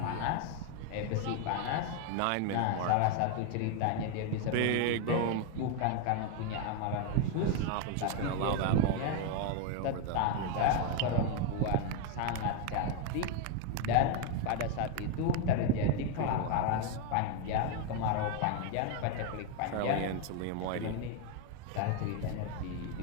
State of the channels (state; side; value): different; both; correlation 0.01